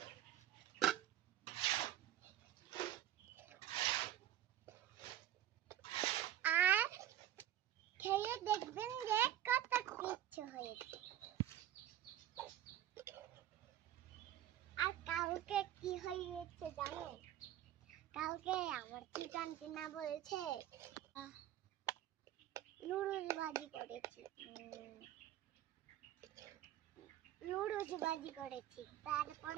আর খেয়ে দেখবেন যে কত কিছু হয়েছে। আর কালকে কি হয়েছে জানেন? কালকে আমার ছোট আন্টি না বলছে নুডলস ভাজি করেছি।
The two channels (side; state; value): left; quieter; 12.3 dB